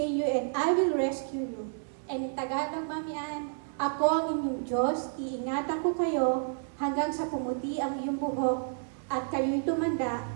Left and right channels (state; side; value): silent; left; digital silence